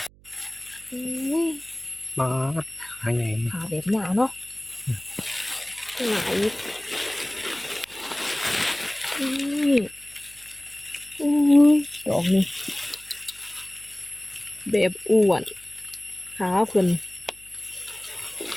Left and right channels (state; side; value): noise; right; hum, 26 dB below the sound